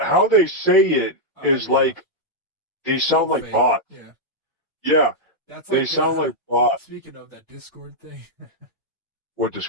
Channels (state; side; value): normal; both; correlation -0.04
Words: they say it is yeah, like they all sound like fake. bots. Yeah, Yeah, that's they like sound like bots. speaking of that Discord thing. What